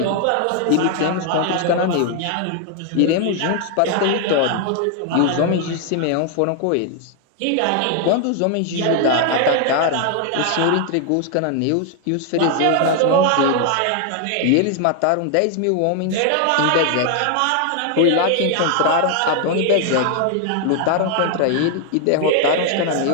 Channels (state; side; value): different; both; correlation 0.00